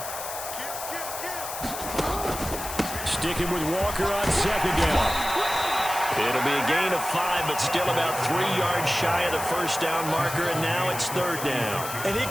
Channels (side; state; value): left; noise; hiss, 8 dB below the sound